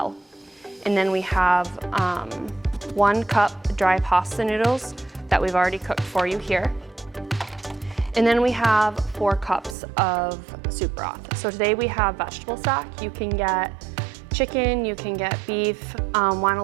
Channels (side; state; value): left; drops out; at 9.8 s